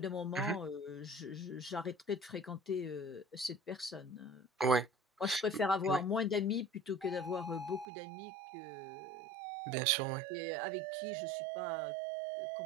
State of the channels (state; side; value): drops out; left; at 7.9 s